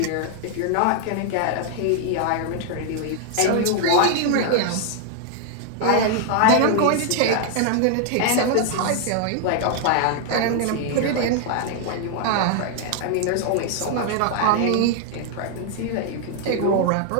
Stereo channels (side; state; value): both; different; correlation 0.00